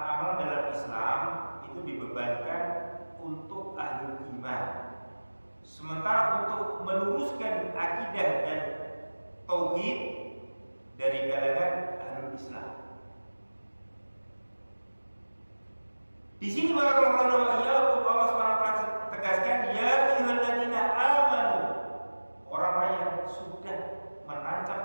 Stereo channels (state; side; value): inverted; both; correlation -1.00